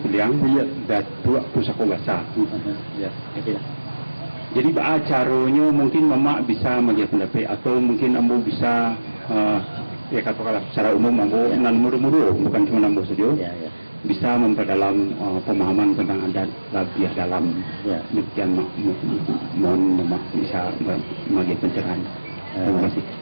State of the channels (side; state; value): both; inverted; correlation -1.00